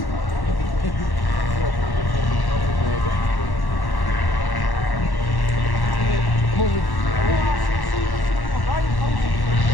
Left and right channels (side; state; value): right; late; 1.1 ms